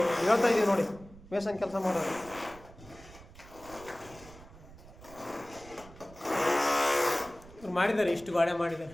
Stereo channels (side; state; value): right; noise; rumble, 20 dB below the sound